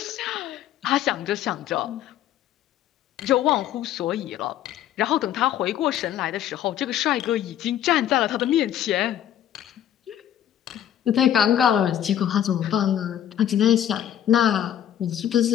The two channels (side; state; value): right; quieter; 10.8 dB